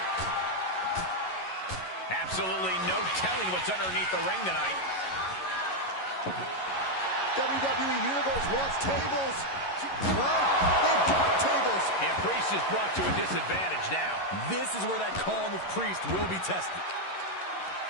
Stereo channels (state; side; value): late; right; 11 ms